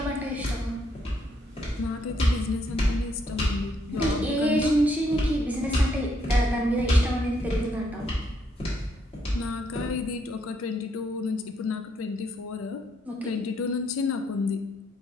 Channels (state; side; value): normal; both; correlation 0.73